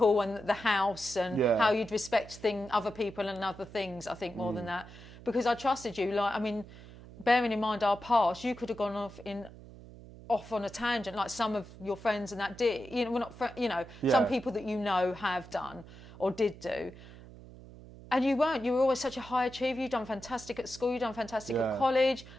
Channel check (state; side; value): noise; right; hum, 17 dB below the sound